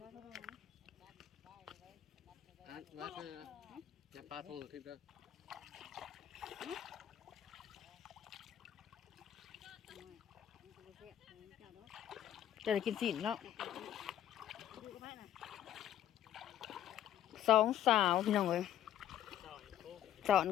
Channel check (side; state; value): right; quieter; 11.4 dB